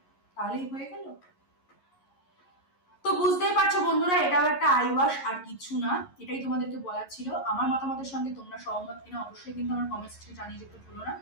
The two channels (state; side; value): late; right; 11 ms